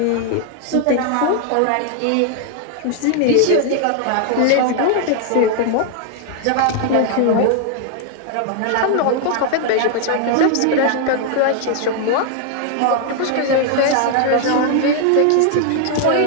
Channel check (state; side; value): different; both; correlation 0.00